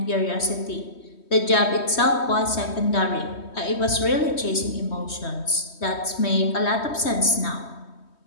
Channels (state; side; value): late; right; 3.2 ms